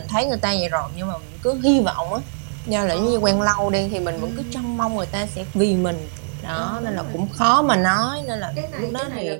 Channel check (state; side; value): silent; left; digital silence